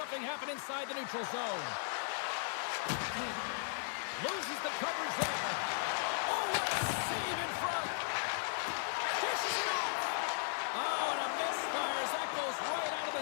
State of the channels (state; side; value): silent; right; digital silence